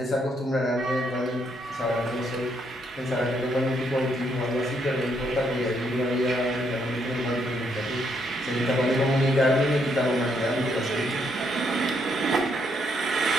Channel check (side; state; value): both; normal; correlation 0.74